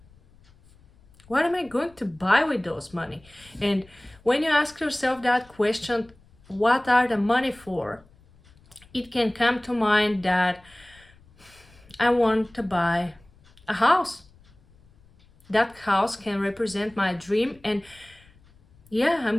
What am I going to buy with those money? And when you ask yourself that question, what are the money for? It can come to mind that I want to buy a house. That house can represent my dream, and yeah, I'm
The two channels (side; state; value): left; noise; rumble, 28 dB below the sound